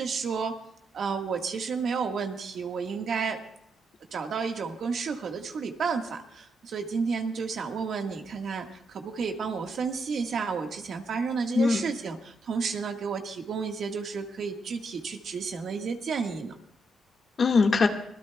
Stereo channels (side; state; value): both; normal; correlation 0.79